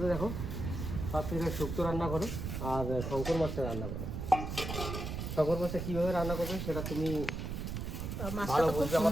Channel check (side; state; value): right; noise; rumble, 4 dB below the sound